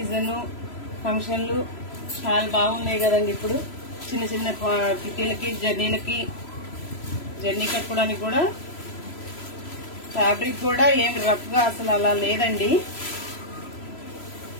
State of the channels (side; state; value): right; late; 3.0 ms